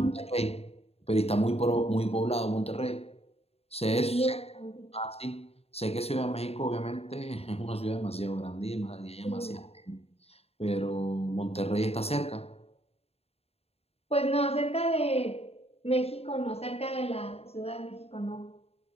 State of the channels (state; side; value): late; right; 0.29 ms